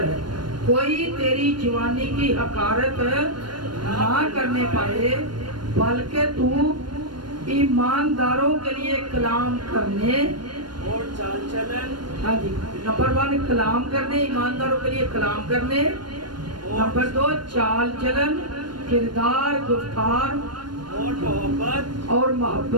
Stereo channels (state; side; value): late; left; 0.72 ms